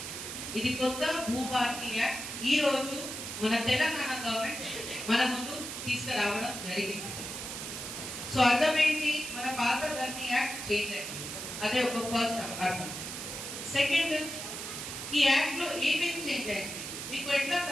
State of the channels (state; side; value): noise; right; hiss, 7 dB below the sound